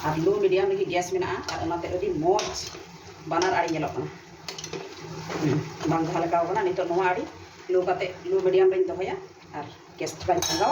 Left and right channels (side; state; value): both; identical; correlation 1.00